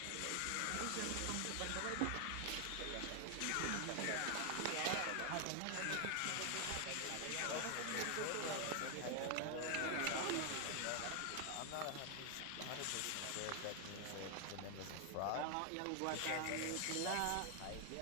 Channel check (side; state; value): both; different; correlation 0.00